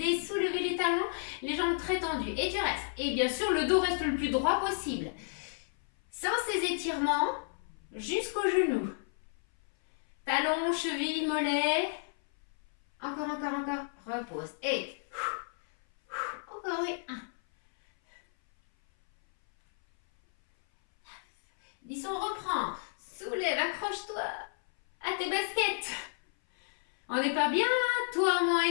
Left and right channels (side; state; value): right; silent; 56 dB below the other